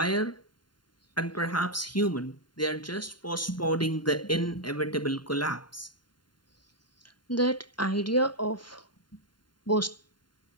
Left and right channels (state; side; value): late; right; 0.71 ms